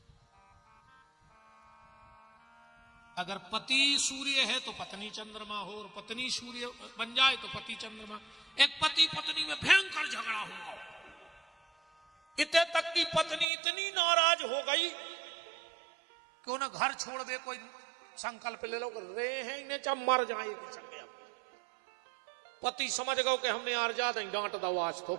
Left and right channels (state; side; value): drops out; left; at 13.5 s